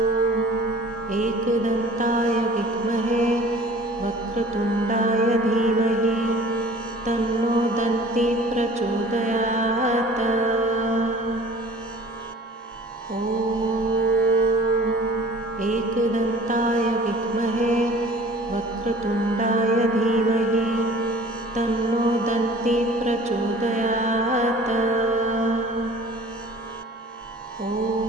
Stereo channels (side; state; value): both; normal; correlation 0.47